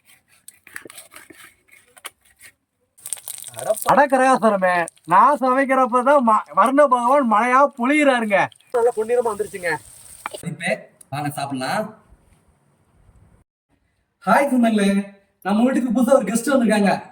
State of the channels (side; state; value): both; identical; correlation 1.00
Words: அடக்கரகாசரமே, நான் சமைக்கிறப்பதான் வர்ண பகவான் மழையா பொழியிறாருங்க. நல்லா பொன்னிறமா வந்துருச்சுங்க. வாங்க சாப்பிடலாம். ஹாய் சொன்னாங்களே, நம்ம வீட்டுக்கு புதுசா ஒரு கெஸ்ட் வந்திருக்காங்க,